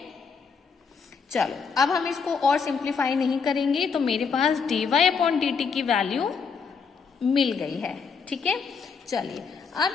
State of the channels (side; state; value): right; quieter; 5.7 dB